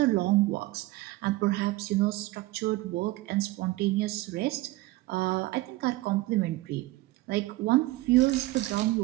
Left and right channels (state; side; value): quieter; left; 18.8 dB